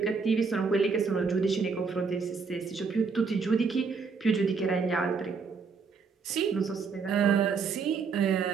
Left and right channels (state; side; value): quieter; left; 5.1 dB